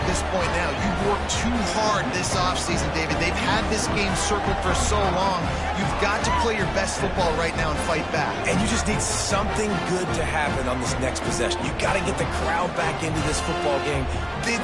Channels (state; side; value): identical; both; correlation 1.00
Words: this point now. You've worked too hard this offseason, David. They've had this game circled for so long. You've got to play your best football right now and fight back. And you just need something good to happen on this next possession. You got to get the crowd back into this football game. Big